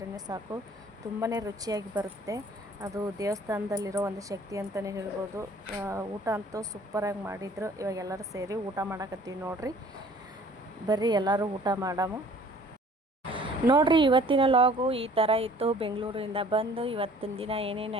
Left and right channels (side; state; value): both; normal; correlation 0.53